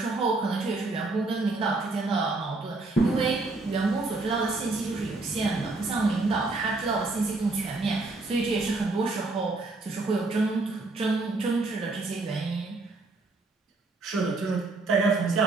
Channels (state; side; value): quieter; left; 3.3 dB